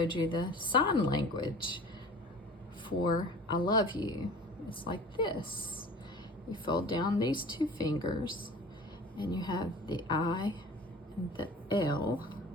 you the sign language for I love you. It's like this. You fold down these two fingers and you have the I and the L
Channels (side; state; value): both; normal; correlation 0.42